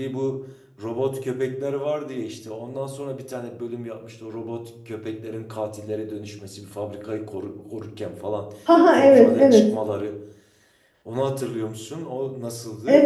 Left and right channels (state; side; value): identical; both; correlation 1.00